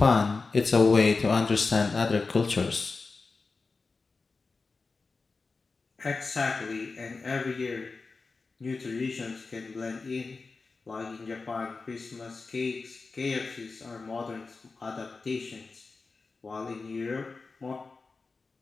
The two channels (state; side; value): quieter; right; 4.1 dB